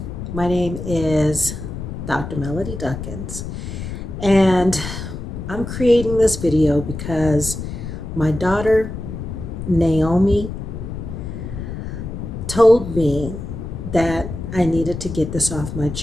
My name is Dr. Melody Duckins, and I'm creating this video because my daughter Naomi told me that I needed to get this off my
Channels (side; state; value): left; noise; rumble, 7 dB below the sound